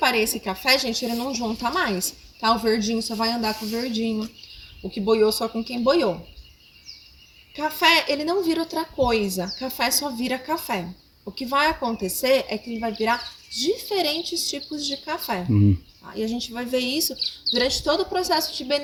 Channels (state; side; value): identical; both; correlation 1.00